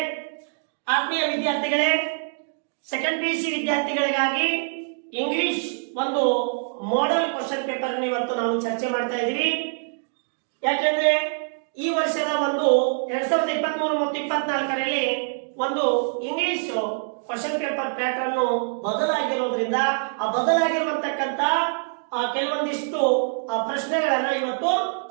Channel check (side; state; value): left; silent; digital silence